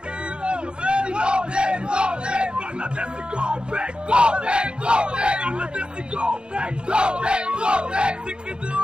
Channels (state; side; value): late; left; 0.051 ms